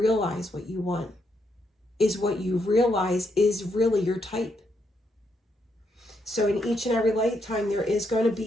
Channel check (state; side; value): normal; both; correlation 0.78